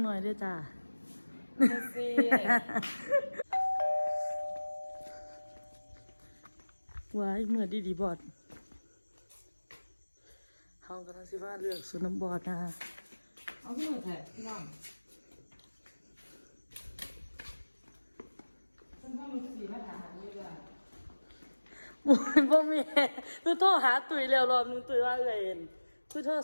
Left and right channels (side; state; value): both; inverted; correlation -1.00